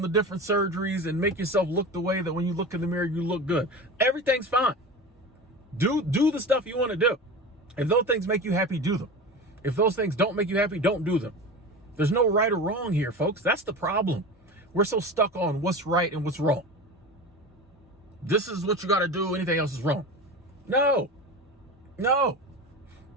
the different surgeries and make yourself look the way that when you look in the mirror, you look good. Everything's fine. Do the stuff you want to do. If those things make you happy, do them. If those things don't make you happy, don't do them. There's no right or wrong here, folks. That's the problem. We're so stuck on what's right and what's wrong. This is what you got to do. Anything else is wrong. No.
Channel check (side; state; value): both; normal; correlation 0.30